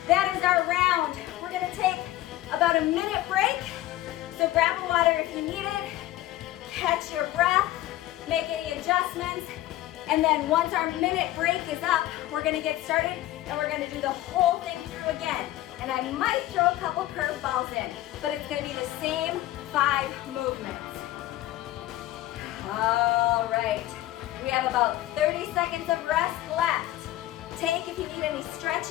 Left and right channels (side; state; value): right; quieter; 15.4 dB